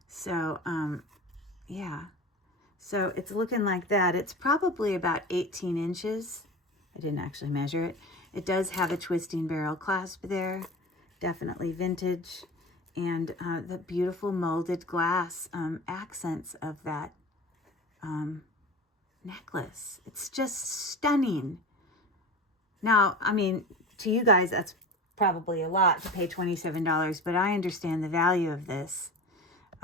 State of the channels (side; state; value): both; normal; correlation 0.32